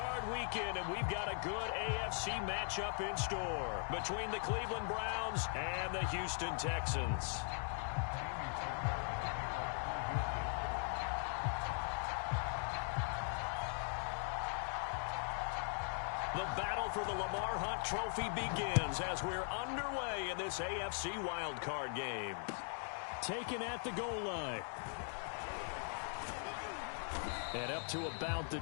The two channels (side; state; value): right; silent; 51 dB below the other